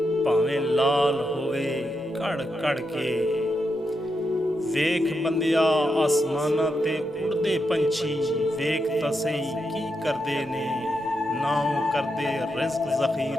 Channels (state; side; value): normal; both; correlation 0.84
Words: भावें लाल होवे कड़ कड़ के। वेख बंदिया आसमाना ते उड़दे पंछी, वेख तां सही की करदे ने। ना ओ करदे रिज़्क